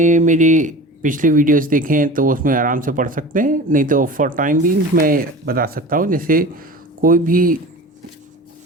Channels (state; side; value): normal; both; correlation 0.35